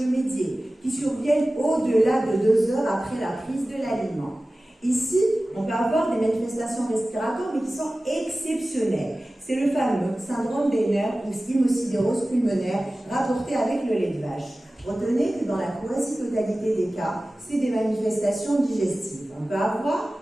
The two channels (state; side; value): normal; both; correlation 0.96